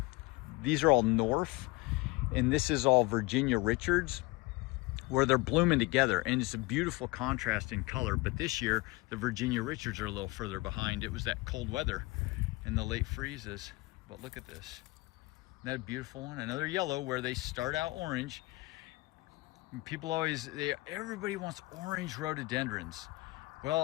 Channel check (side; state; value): right; quieter; 22.5 dB